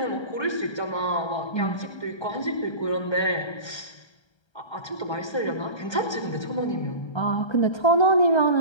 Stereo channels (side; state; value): right; late; 1.3 ms